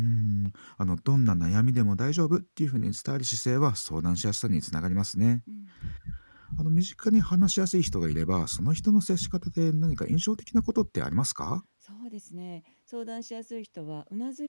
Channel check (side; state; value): both; inverted; correlation -1.00